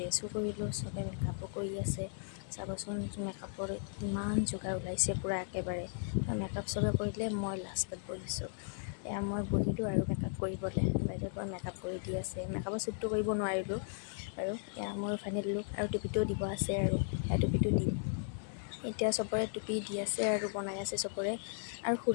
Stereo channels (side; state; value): right; silent; 54 dB below the other